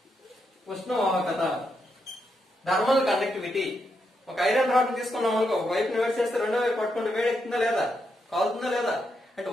ఉష్ణవాహకత థర్మల్ కండక్టివిటీ. ఒక ఐరన్ రాడ్ తీసుకున్నాం అనుకో, ఒక వైపుని వేడి చేస్తే రెండో వైపు పట్టుకుంటే వేడి ఎక్కుతుందా లేదా? కాలుతుందా లేదా? అంటే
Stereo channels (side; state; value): both; normal; correlation 0.81